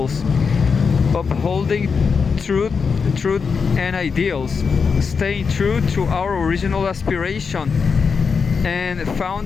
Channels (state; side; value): quieter; right; 5.5 dB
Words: upholding truth and ideals, staying true to our original aspiration and